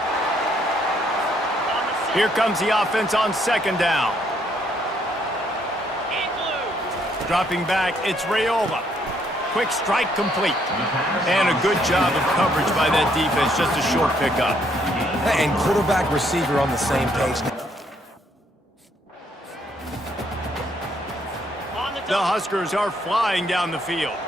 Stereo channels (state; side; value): normal; both; correlation 0.70